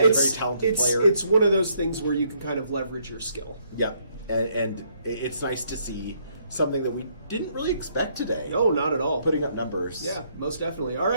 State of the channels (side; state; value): both; inverted; correlation -0.70